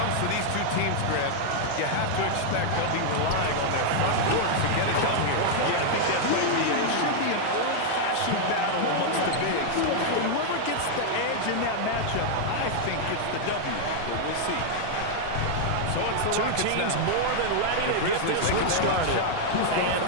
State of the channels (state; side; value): different; both; correlation 0.00